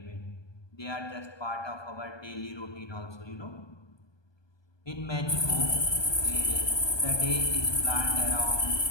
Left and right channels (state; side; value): late; right; 1.2 ms